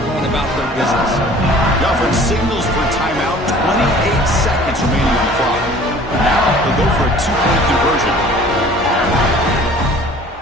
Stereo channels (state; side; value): normal; both; correlation 0.49